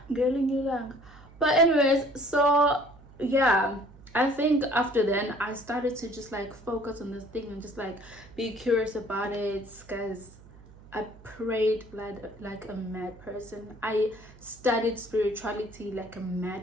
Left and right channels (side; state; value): right; noise; hum, 22 dB below the sound